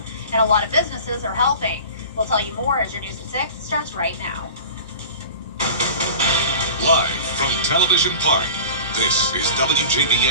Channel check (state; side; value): inverted; both; correlation -0.37